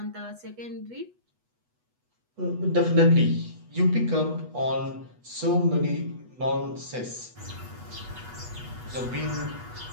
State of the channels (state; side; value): late; left; 8.2 ms